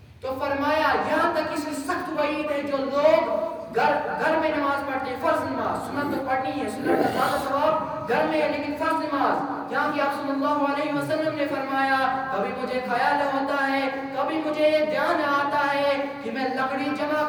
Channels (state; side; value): identical; both; correlation 1.00